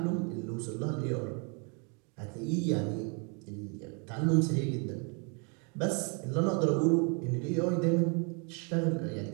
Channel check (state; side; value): quieter; left; 35.9 dB